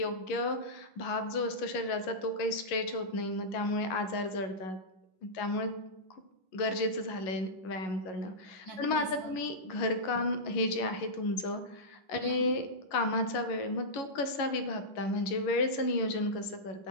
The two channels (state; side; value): late; right; 11 ms